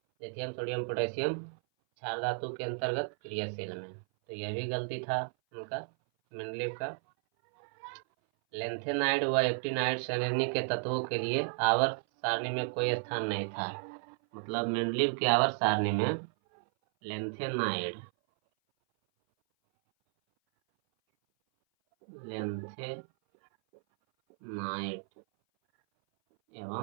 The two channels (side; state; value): left; silent; 56 dB below the other